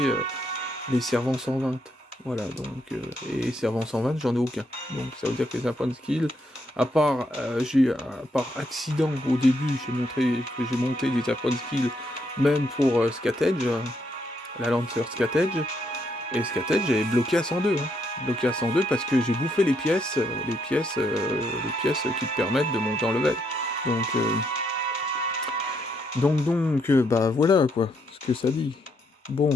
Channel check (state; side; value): normal; both; correlation 0.76